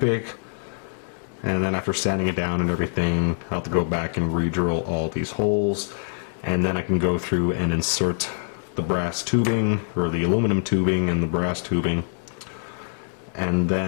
and then after sanding it down and everything I'll have to go back and re-drill all these holes, and then I can go through and insert the brass tubing, or the aluminum tubing and the brass tubing, and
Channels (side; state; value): right; silent; 62 dB below the other